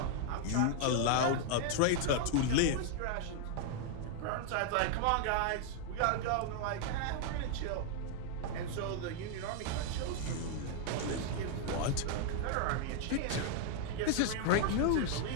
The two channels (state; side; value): different; both; correlation 0.00